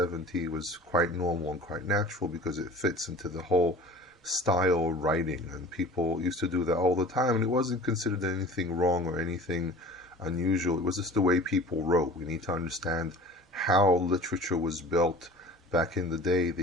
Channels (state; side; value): normal; both; correlation 0.42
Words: was quite normal and quite natural because it fits into the whole style of writing, and people used to do that all the time, and it wasn't considered anything wrong or anything unusual. It was just the way people wrote. We need to understand how literature was built. Back in the day,